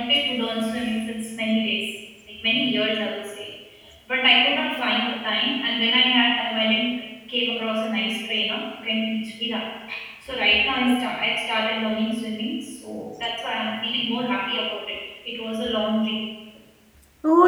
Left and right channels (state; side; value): identical; both; correlation 1.00